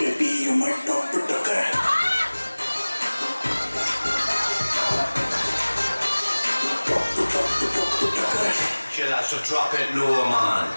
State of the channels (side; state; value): both; inverted; correlation -1.00